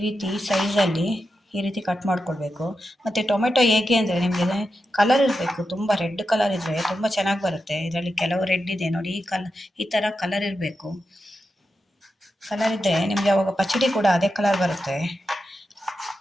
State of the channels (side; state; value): both; normal; correlation 0.89